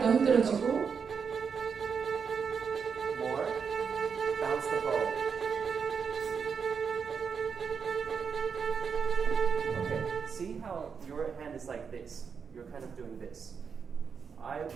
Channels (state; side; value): quieter; left; 6.2 dB